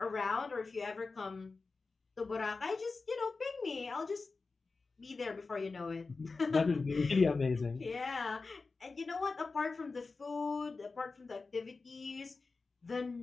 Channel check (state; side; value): quieter; right; 4.1 dB